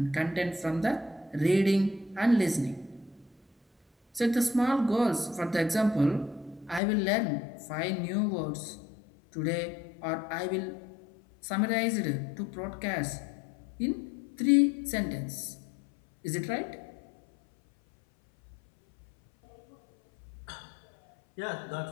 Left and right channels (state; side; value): drops out; right; at 6.8 s